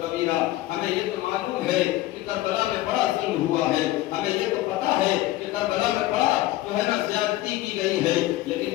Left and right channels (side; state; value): right; quieter; 16.2 dB